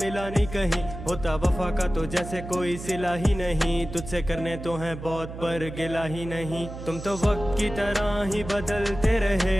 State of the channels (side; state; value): right; noise; hum, 10 dB below the sound